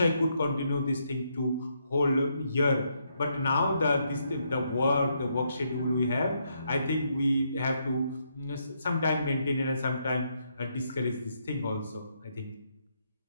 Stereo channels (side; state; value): both; inverted; correlation -0.76